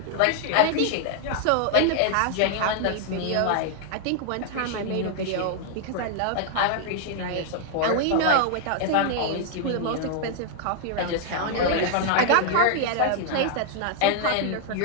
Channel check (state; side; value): different; both; correlation 0.00